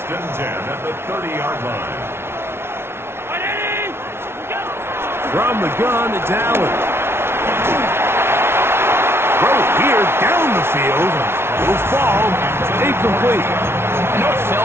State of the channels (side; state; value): left; late; 0.12 ms